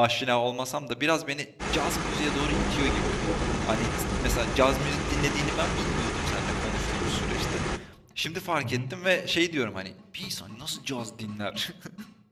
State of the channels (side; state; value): both; identical; correlation 1.00